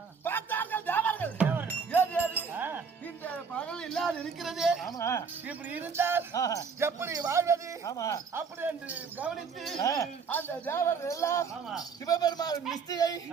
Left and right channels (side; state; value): left; quieter; 5.7 dB